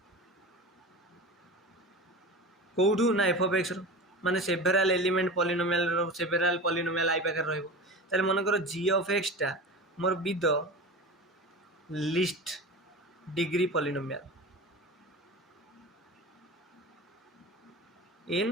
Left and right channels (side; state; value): both; normal; correlation 0.31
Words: कौटू ना एफ ऑफ एक्स रो माने सेवेरल एलिमेंट पॉलिनोमियल रो सेवेरल पॉलिनोमियल आई पाखे रहइबो ताले मन कर जी ऑफ एक्स टा मोर be the least degree polynomial